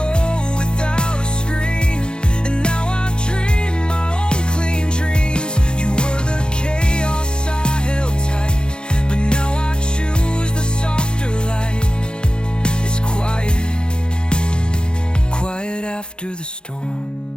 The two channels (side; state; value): right; late; 0.050 ms